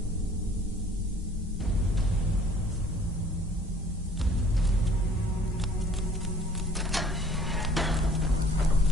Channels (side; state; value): both; normal; correlation 0.55